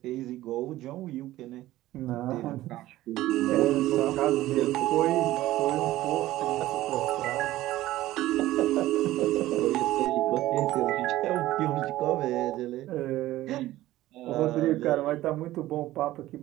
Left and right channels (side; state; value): left; quieter; 15.7 dB